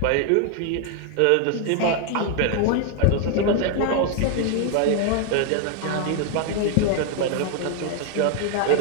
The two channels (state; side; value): different; both; correlation 0.00